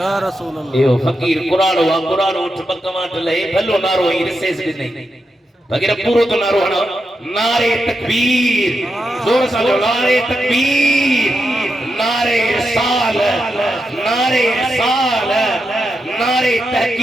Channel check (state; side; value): normal; both; correlation 0.86